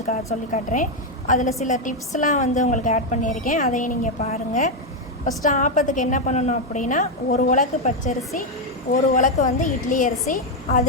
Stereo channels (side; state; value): both; normal; correlation 0.04